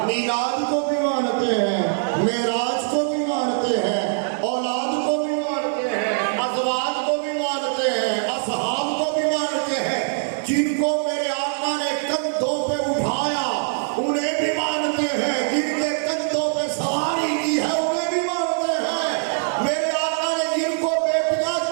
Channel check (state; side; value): silent; left; digital silence